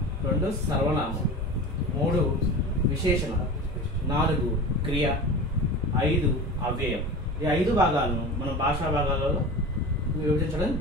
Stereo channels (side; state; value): both; normal; correlation 0.32